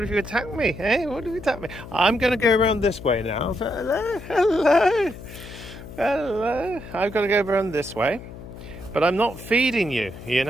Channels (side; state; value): left; noise; hum, 14 dB below the sound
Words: if you attack me? Hey, what if you attack me? I'm going to go around this way now. Hello. I've got to go around this way. But I'm not feeding you, you